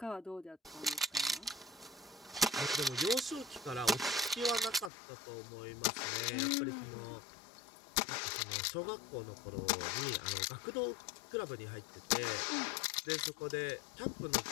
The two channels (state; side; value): drops out; right; at 4.9 s